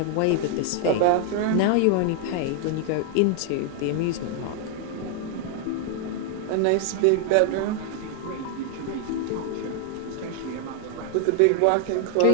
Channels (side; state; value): both; different; correlation 0.00